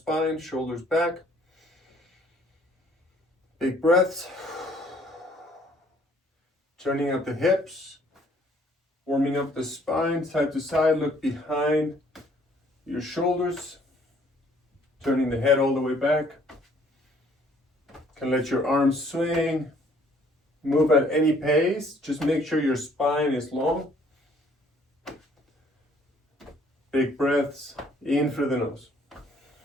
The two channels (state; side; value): normal; both; correlation 0.61